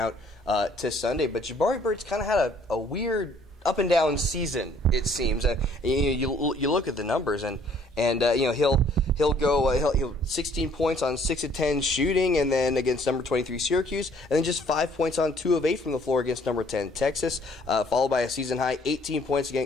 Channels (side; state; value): both; normal; correlation 0.60